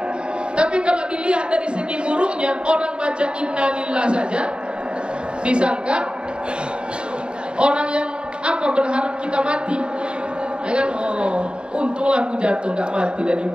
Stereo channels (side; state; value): left; late; 0.052 ms